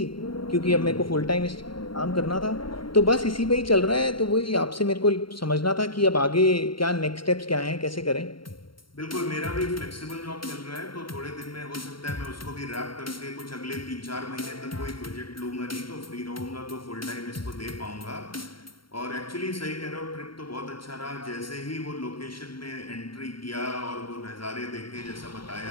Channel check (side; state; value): right; late; 0.73 ms